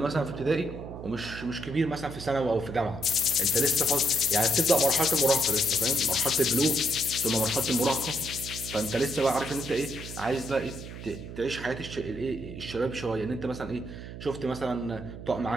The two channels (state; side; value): noise; right; hum, 11 dB below the sound